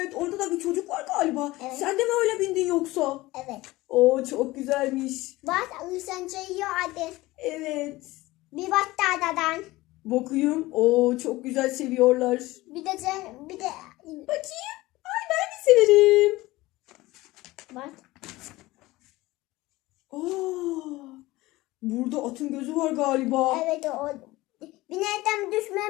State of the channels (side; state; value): right; quieter; 19.2 dB